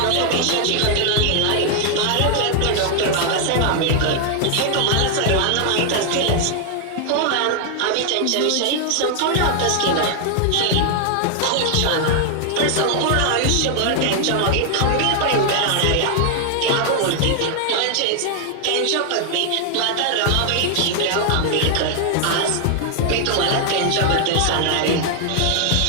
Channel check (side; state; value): both; different; correlation 0.00